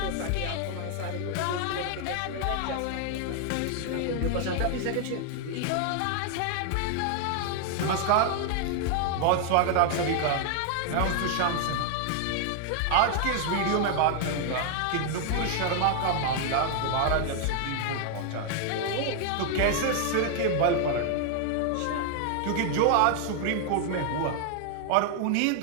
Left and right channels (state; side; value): different; both; correlation 0.00